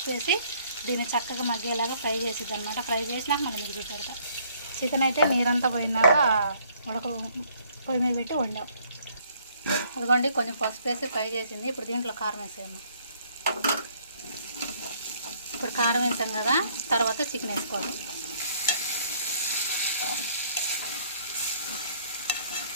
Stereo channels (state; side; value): inverted; both; correlation -0.63